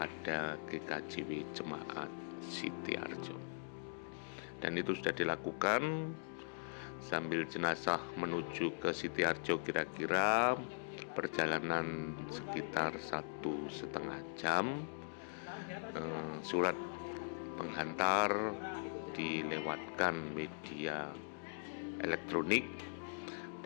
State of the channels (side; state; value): right; silent; digital silence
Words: GKJW Jemaat Sitiharjo. Dan itu sudah dilakukan. Sambil jenazah menuju ke Sitiharjo, kira-kira perjalanan sekitar 1,5 jam. Surat penghantar dilewatkan media elektronik